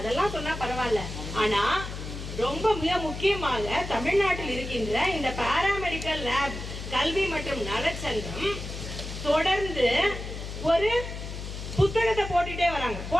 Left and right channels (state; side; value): noise; left; hum, 8 dB below the sound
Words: சொன்னா பரவாயில்ல. ஆனா ரொம்ப மிக முக்கியமாக தமிழ்நாட்டில் இருக்கின்ற இந்த பாராமெடிக்கல் லேப் கல்வி மற்றும் நலச்சங்கம் தொடர்ந்து ஒரு புத்தகத்தை போட்டுட்டே வராங்க.